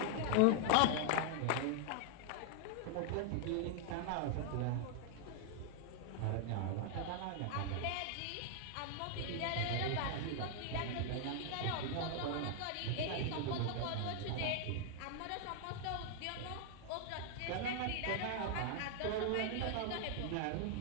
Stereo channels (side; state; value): both; different; correlation 0.00